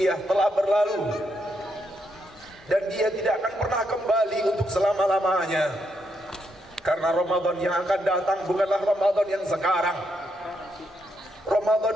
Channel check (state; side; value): normal; both; correlation 0.79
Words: telah berlalu dan dia tidak akan pernah kembali untuk selama-lamanya, karena Ramadan yang akan datang bukanlah Ramadan yang sekarang.